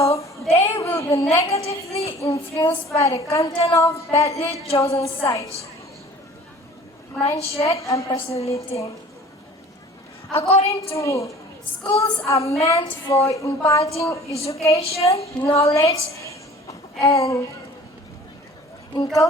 they will be negatively influenced by the content of badly chosen sites, mindset, and personality. According to me, schools are meant for imparting education, knowledge, and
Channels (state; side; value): normal; both; correlation 0.47